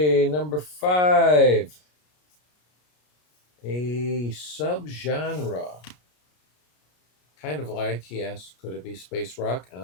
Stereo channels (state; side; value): late; right; 33 ms